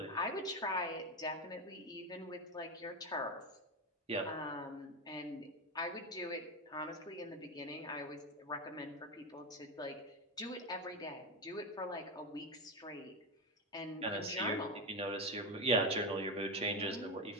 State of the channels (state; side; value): normal; both; correlation 0.14